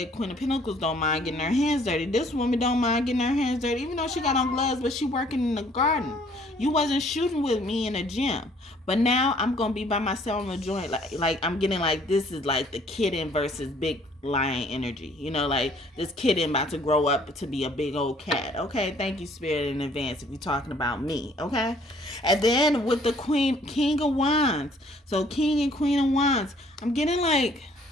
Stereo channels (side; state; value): both; normal; correlation 0.60